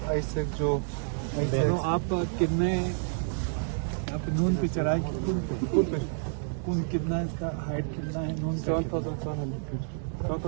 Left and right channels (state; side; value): silent; left; 58 dB below the other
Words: आईसेक जो तो आप कितने आप नून पे चढ़ाई कौन कितना इसका हाइट कितना है नून